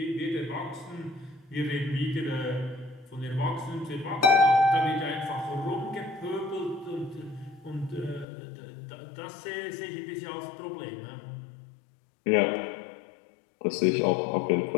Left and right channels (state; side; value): drops out; right; at 8.2 s